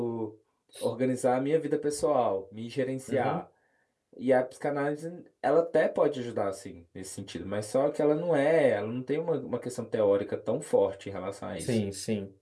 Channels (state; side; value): identical; both; correlation 1.00